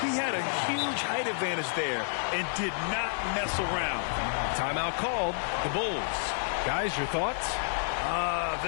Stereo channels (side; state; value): right; silent; 58 dB below the other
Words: He had a huge height advantage there and did not mess around. Timeout called. The Bulls. Guys, your thoughts?